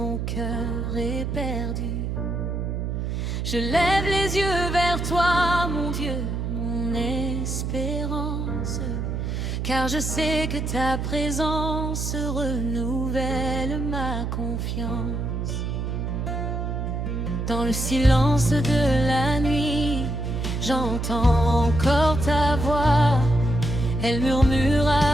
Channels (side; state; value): right; noise; hum, 2 dB below the sound